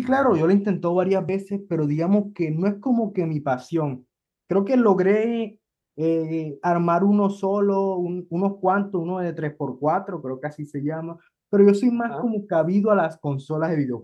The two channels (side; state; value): both; identical; correlation 1.00